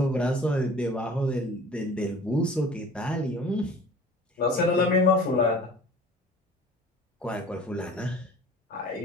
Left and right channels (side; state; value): both; normal; correlation 0.45